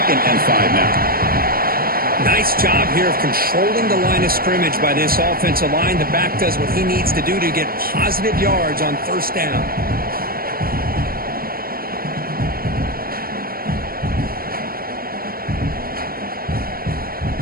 and 5 now. Nice job here of controlling the line of scrimmage by this offensive line. The back does what he needs to do to get positive yards on 1st down.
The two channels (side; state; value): left; late; 0.43 ms